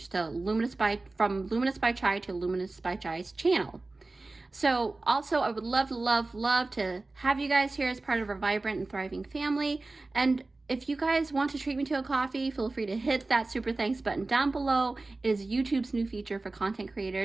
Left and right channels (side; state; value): left; quieter; 3.3 dB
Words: So from Luminous by Chai to Luminous by Chai's channel. So also, I would love to have you guys here as part of our vibrant and thriving family. And if you guys want to treat me to a coffee, feel free to hit that super thanks button down below. It is YouTube's new feature for content